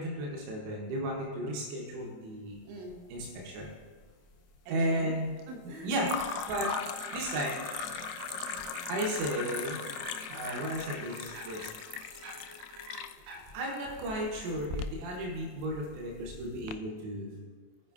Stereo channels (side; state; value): left; late; 28 ms